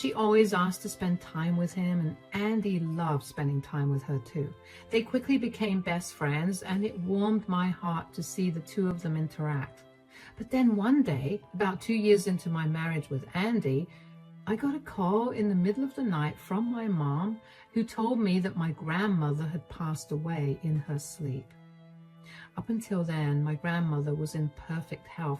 always asked to spend time with him, and Andy loved spending time with her too. They quickly became best friends, and it warmed my heart to see the two of them interact. But then one day, about 2 years into my marriage with Andy, I got a call in the middle of the night from my mom, who told me that my grandmother had passed away in her sleep. Up until then, my grandmother was in perfect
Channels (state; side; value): identical; both; correlation 1.00